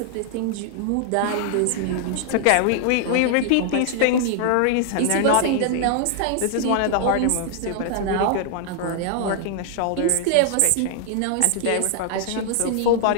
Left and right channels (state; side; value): different; both; correlation 0.00